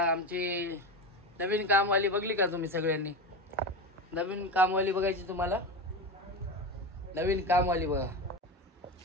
नवीन कामवाली बघली का तुम्ही सगळ्यांनी? नवीन कामवाली बघायची तुम्हाला? नवीन कामवाली बघा.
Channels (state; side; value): normal; both; correlation 0.22